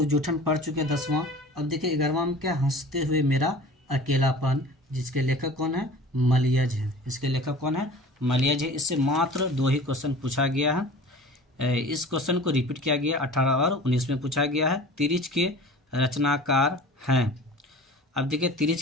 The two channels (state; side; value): normal; both; correlation 0.41